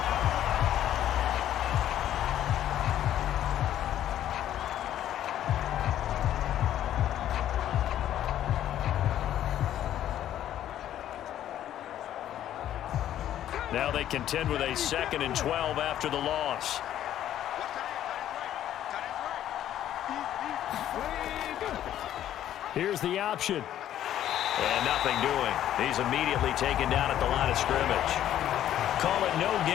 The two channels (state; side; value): quieter; right; 11.6 dB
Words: Now they contend with a 2nd and 12 after the loss. Here's the option. And nothing doing. He's immediately taken down at the line of scrimmage. Call it no